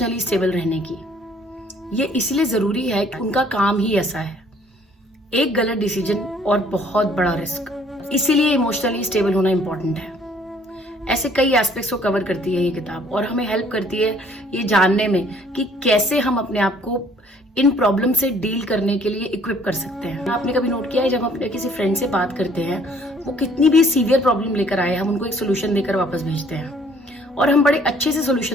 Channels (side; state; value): both; normal; correlation 0.60